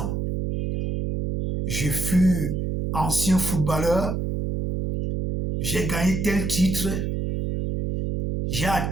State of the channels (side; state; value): right; noise; hum, 2 dB below the sound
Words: Je fus ancien footballeur. J'ai gagné tel titre. J'ai